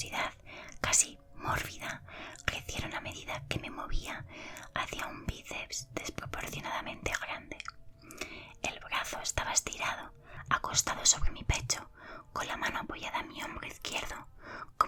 casi mórbida, crecieron a medida que me movía hacia un bíceps desproporcionadamente grande. El brazo estaba estirado, acostado sobre mi pecho, con la mano apoyada en mi hombro izquierdo,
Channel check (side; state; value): both; identical; correlation 1.00